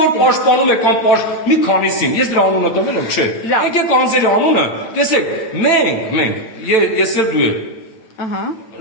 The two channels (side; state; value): right; late; 9.0 ms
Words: որ պաշտպանում է կամ մի քանիսին, ես դրա անունը տվել եմ, չէ։ Եկեք անձերի անունը, տեսեք, մենք, ես էլ դու եք։ Ահա։